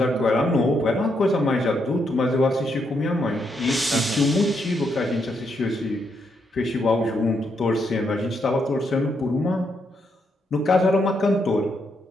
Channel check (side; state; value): both; normal; correlation 0.78